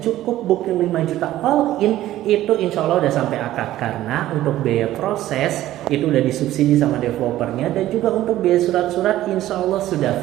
cukup booking 5 juta all in, itu insya Allah udah sampai akad. Karena untuk biaya proses itu udah disubsidi sama developernya, dan juga untuk biaya surat-surat insya Allah sudah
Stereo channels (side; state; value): left; quieter; 14.2 dB